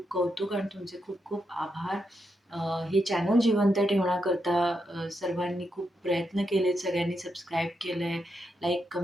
कौतुक आणि तुमचे खूप खूप आभार. अ, हे चॅनल जिवंत ठेवण्याकरता सर्वांनी खूप प्रयत्न केलेत, सगळ्यांनी सबस्क्राईब केलंय, लाईक,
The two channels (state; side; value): normal; both; correlation 0.83